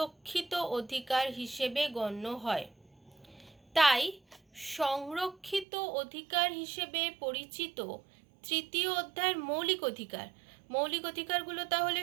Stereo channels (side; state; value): left; drops out; at 5.7 s